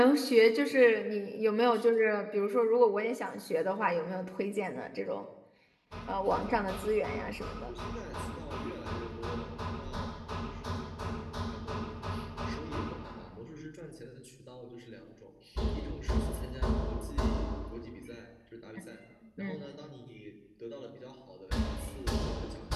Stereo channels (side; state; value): both; identical; correlation 1.00